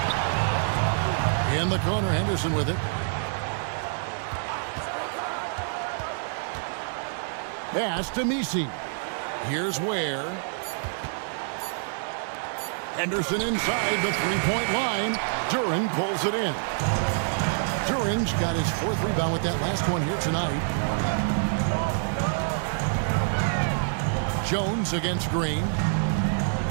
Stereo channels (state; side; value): silent; left; 60 dB below the other